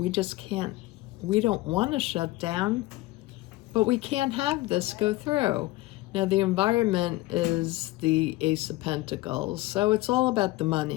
just can't, we don't want to shut down, but we can't have this go through. Now, the environment is the Ace of Pentacles, so it's all about the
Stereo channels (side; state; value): right; quieter; 19.0 dB